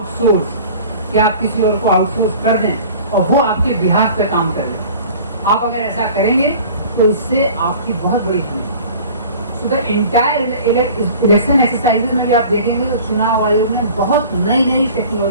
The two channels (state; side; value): inverted; both; correlation -0.44